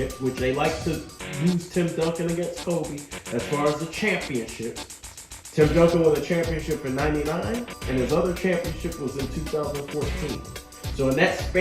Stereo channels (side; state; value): both; identical; correlation 1.00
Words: which they like to use Tim Duncan against Kobe as far as the championships, Tim Duncan won a championship in '99, and his other championship was in 2014. So in that